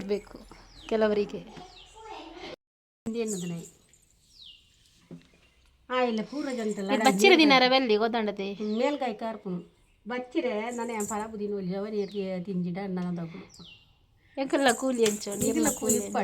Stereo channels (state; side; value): identical; both; correlation 1.00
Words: ಕೆಲವರಿಗೆ. ಬಚ್ಚಿರ ದಿನಾರ ಬೆಲ್ಲಿ ಗೊತ್ತಾಂಡತೆ ಮೇಲ್ಗಾಯಿ ಕಾರ್ಪುನು ಬಚ್ಚಿರೆ ನನಗೆ ಫಲ ಬುದಿನ ಅವನಿಗೆ ತಿಂಜಿಡ ಅನ್ನೋದು ಎಂಕಲ್ಲ ಕೂಲಿ ಹಂಚೋಡಿ ಇಲ್ಲ ಕೂಲಿ